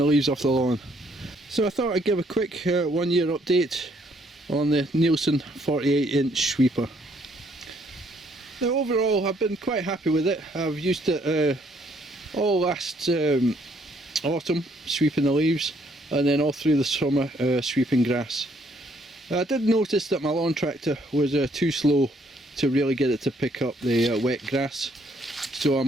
leaves off the lawn. So I thought I'd give a quick 1 year update on the Neilson 48-inch sweeper. Now overall I've been quite happy with it. I've used it all last autumn sweeping the leaves, and then all through the summer sweeping grass. I did notice that my lawn tractor was too slow to really get it to pick up the wet grass. So I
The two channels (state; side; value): normal; both; correlation 0.68